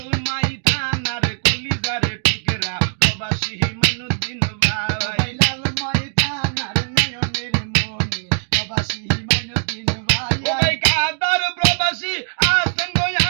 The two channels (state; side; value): silent; left; 57 dB below the other